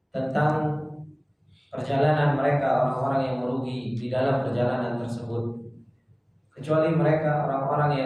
tentang perjalanan mereka orang-orang yang merugi di dalam perjalanan tersebut, kecuali mereka orang-orang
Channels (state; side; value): identical; both; correlation 1.00